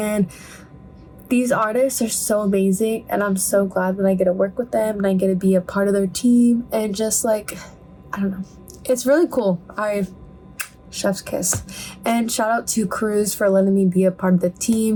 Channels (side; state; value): both; identical; correlation 1.00